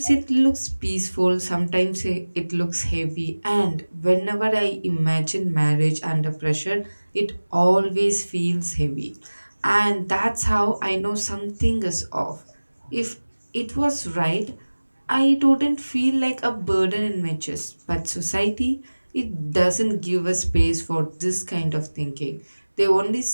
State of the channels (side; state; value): both; inverted; correlation -1.00